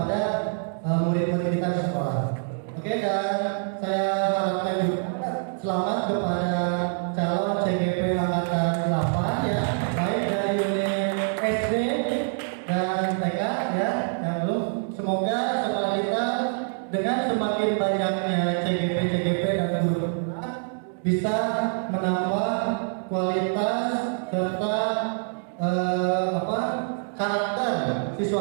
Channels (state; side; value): silent; left; digital silence